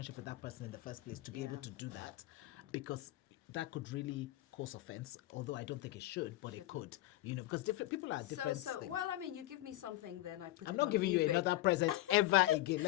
with that person in the first place to be able to do that, because that could really cause offense. Although I don't think it should, but it could. Because different people are different. So things. well, you give me something, then I put I'm it not on giving eBay. you another present ever again.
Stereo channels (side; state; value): right; quieter; 16.5 dB